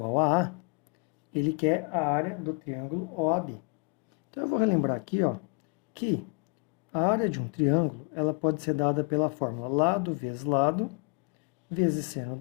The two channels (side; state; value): right; quieter; 33.3 dB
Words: a A, ele quer a área do triângulo OAB. Então, eu vou relembrar aqui, ó, que a área de um triângulo ela pode ser dada pela fórmula lado vezes seno